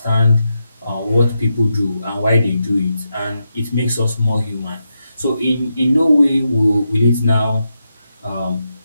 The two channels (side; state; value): both; inverted; correlation -0.86